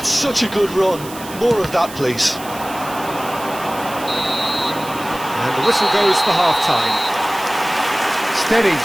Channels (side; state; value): right; noise; hiss, 15 dB below the sound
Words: such a good run. More of that, please. And the whistle goes for half-time. Steady,